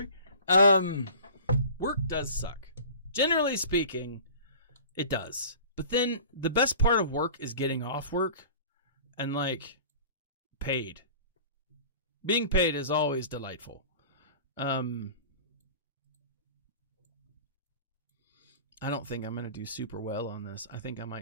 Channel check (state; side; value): inverted; both; correlation -0.43